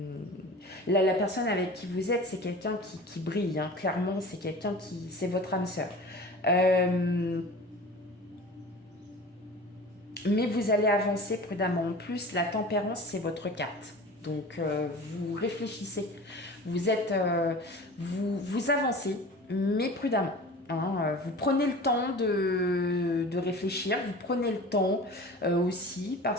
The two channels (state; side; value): normal; both; correlation 0.38